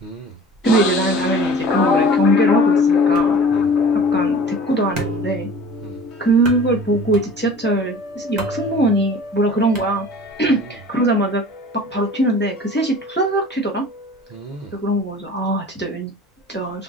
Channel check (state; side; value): normal; both; correlation 0.43